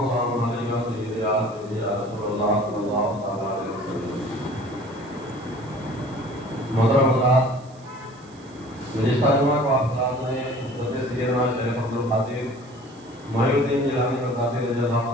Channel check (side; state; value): right; noise; hiss, 27 dB below the sound